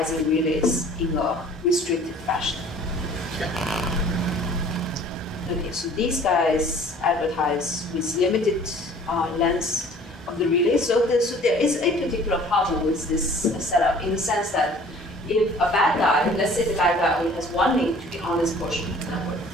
relays in a restricted fashion. Okay, so these guys advertise with limited length of the relay. So there is a particular problem with this setup in the sense that if a bad guy, let's say the bad guy only has one link to the honest portion of the network,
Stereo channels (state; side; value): normal; both; correlation 0.51